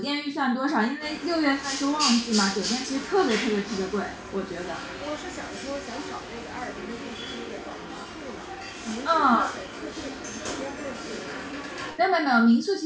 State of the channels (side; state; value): both; identical; correlation 1.00